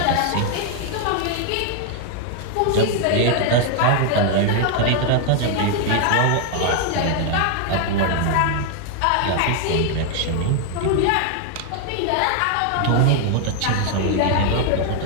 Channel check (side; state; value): both; different; correlation 0.00